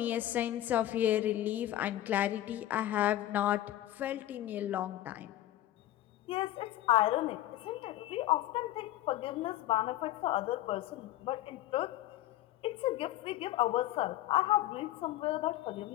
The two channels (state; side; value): quieter; right; 14.2 dB